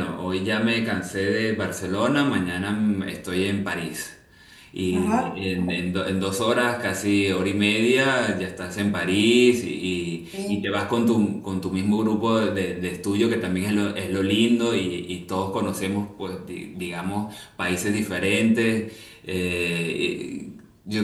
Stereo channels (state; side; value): identical; both; correlation 1.00